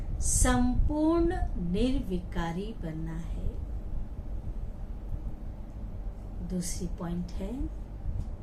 संपूर्ण निर्विकारी बनना है। दूसरी पॉइंट है,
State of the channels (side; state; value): both; identical; correlation 1.00